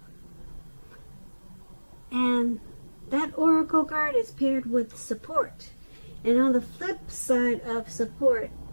And that oracle card is paired with support. And on the flip side of support,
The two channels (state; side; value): inverted; both; correlation -1.00